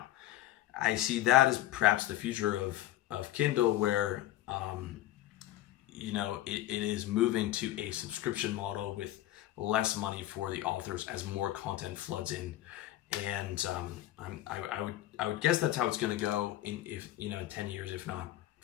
I see that as perhaps the future of Kindle, where it is moving to a subscription model with less money for the authors as more content floods in. And I would guess that's how it's going to go in 10 years, if not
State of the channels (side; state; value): right; quieter; 14.6 dB